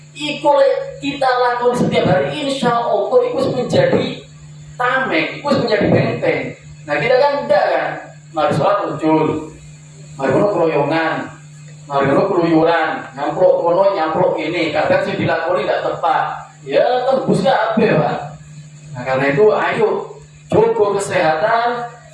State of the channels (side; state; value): both; identical; correlation 1.00